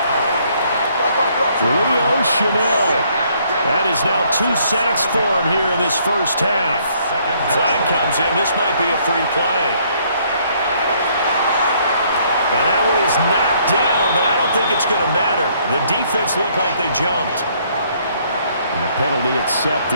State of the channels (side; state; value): both; inverted; correlation -0.66